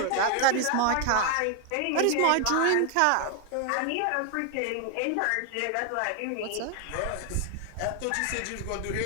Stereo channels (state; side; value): different; both; correlation 0.00